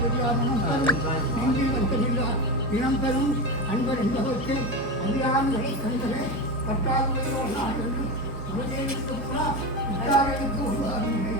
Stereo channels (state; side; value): normal; both; correlation 0.19